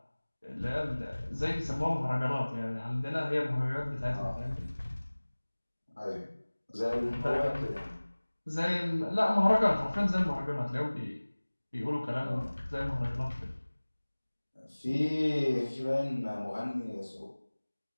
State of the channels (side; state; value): both; inverted; correlation -1.00